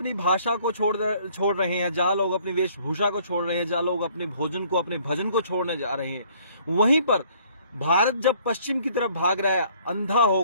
भाषा को छोड़ रहे हैं, जहां लोग अपनी वेशभूषा को छोड़ रहे हैं, जहां लोग अपने भोजन को, अपने भजन को छोड़ने जा रहे हैं, वहीं पर भारत जब पश्चिम की तरफ भाग रहा है, अंधा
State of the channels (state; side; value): inverted; both; correlation -0.60